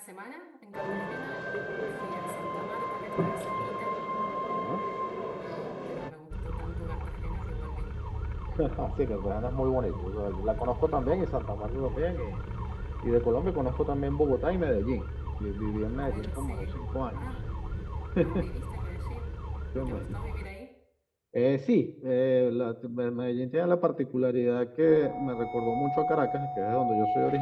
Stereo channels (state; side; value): identical; both; correlation 1.00